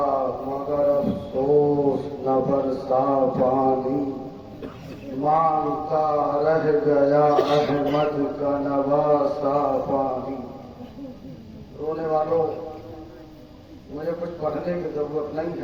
مگر افسوس نہ برسا پانی. مانگتا رہ گیا احمد کا نواسا پانی. رونے والوں، مجھے کچھ پڑھنے کی ضرورت نہیں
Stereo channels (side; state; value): both; identical; correlation 1.00